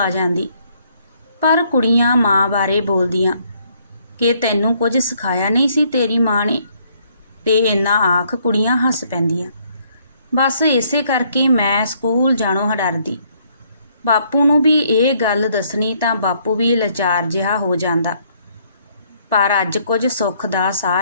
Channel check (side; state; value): both; inverted; correlation -0.67